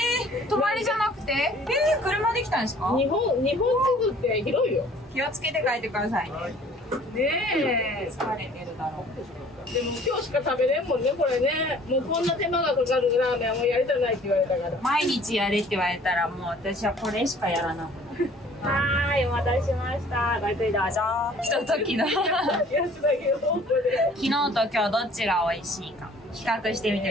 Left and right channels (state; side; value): normal; both; correlation 0.53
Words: 泊まりじゃなくて？車で来たんですか？日本地図って広いよ。気をつけて帰ってくださいね。ねえ。疲れてるだろう。でも今日しか食べれんもんね、これね。もうこんな手間がかかるラーメンはもうやりたないって言われたから。毎日やれって言われたらもう私はこれしかやらなくなる。はーい、お待たせしました。ごゆっくりどうぞ。ひとときの昨やつだけど、本当で。日と今日どっちが美味しいか比較してみて